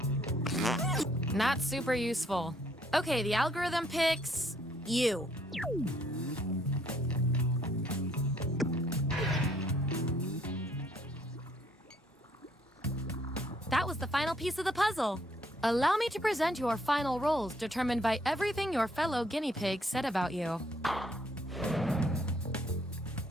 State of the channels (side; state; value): both; normal; correlation 0.67